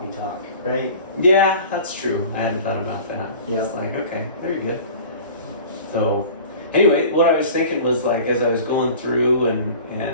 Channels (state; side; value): inverted; both; correlation -0.42